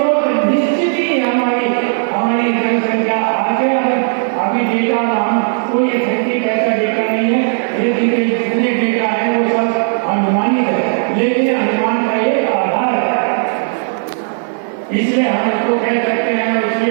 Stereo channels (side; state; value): left; silent; 69 dB below the other